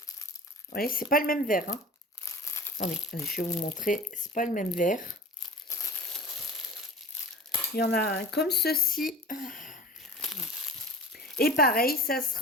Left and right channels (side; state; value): both; normal; correlation 0.39